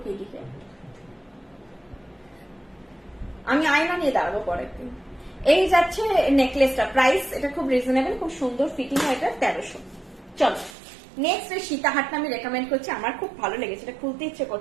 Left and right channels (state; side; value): drops out; left; at 10.8 s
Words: কি দিকে আমি আয়না নিয়ে দাঁড়াবো পরের দিন। এই যাচ্ছে নেকলেসটা, প্রাইস এটা খুব রিজনেবল, খুব সুন্দর ফিটিং হয়, এটা 1300। চলো নেক্সট এই সীতাহারটা আমি রেকমেন্ড করছি, আমার খুব ভালো লেগেছে, এটা খুলতে ইচ্ছে